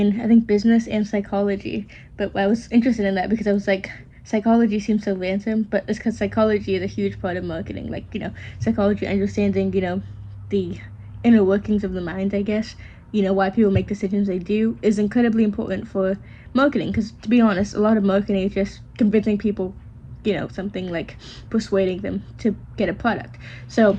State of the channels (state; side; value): identical; both; correlation 1.00